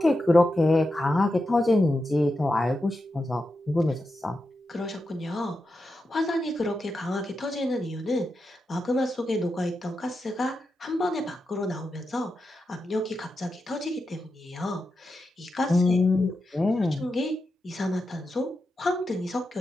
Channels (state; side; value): normal; both; correlation 0.88